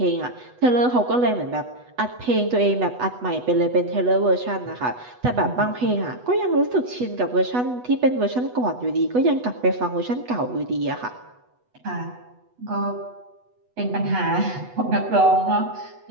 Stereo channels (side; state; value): left; late; 8.1 ms